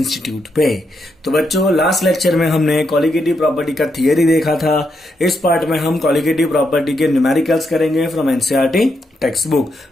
पे। तो बच्चों, लास्ट लेक्चर में हमने कॉलिगेटिव प्रॉपर्टी का थियरी देखा था। इस पार्ट में हम कॉलिगेटिव प्रॉपर्टी के न्यूमेरिकल्स करेंगे फ्रॉम एनसीईआरटी टेक्स्ट बुक।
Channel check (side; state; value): both; normal; correlation 0.81